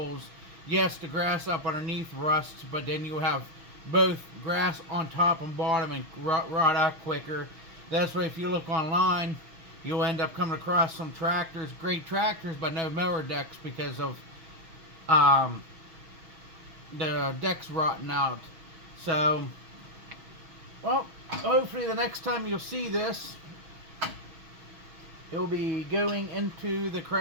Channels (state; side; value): late; left; 6.3 ms